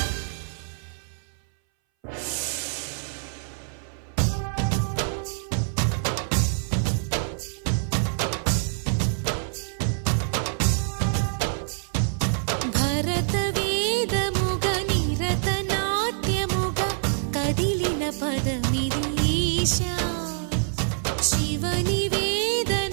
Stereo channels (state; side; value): silent; left; 60 dB below the other